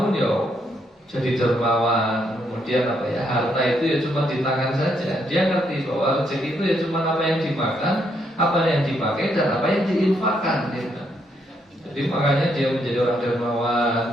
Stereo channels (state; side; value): normal; both; correlation 0.75